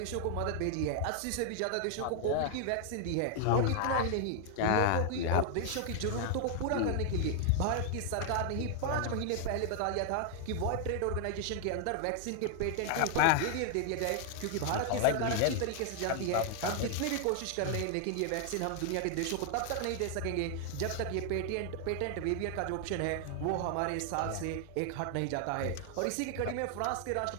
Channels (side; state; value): both; different; correlation 0.00